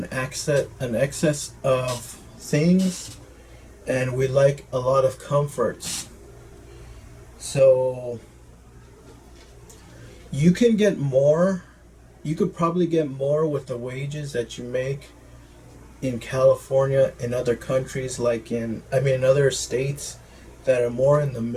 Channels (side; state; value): both; identical; correlation 1.00